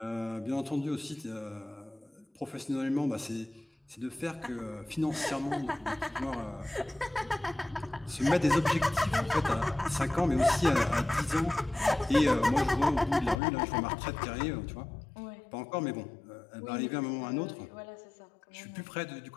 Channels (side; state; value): right; drops out; at 13.4 s